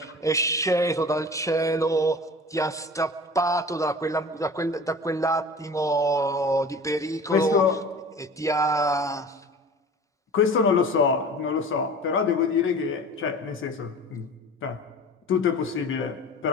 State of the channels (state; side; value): normal; both; correlation 0.39